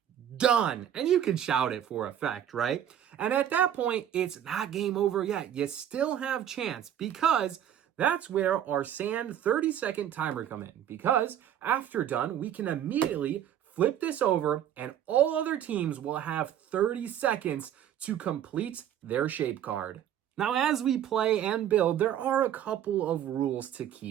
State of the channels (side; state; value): left; quieter; 10.3 dB